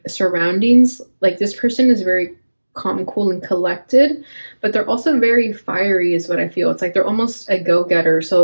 surroundings. Like this person is very calm, cool, and collected, but they're also very fiery is what I feel. It's like they're almost a go-getter.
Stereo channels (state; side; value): inverted; both; correlation -1.00